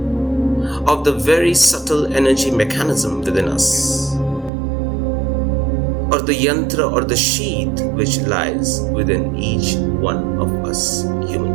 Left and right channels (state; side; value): drops out; left; at 4.5 s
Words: of the very subtle energy mechanism within us, or the yantra or the sheath which lies within each one of us